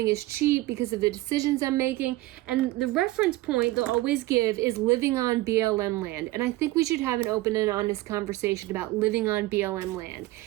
is cheap because of the decisions I'm making. And the reference point they'll always give is living on BLM land. And I think we should have an open and honest conversation about living on BLM land.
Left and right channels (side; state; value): left; quieter; 18.3 dB